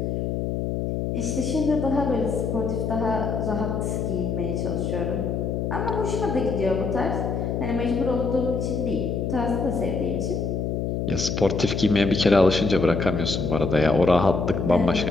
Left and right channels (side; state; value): left; noise; hum, 1 dB below the sound